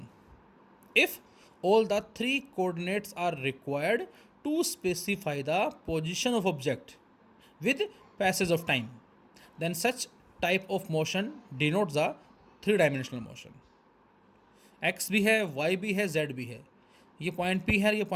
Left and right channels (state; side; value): identical; both; correlation 1.00